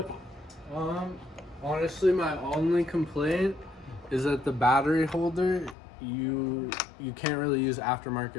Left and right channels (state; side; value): drops out; right; at 5.8 s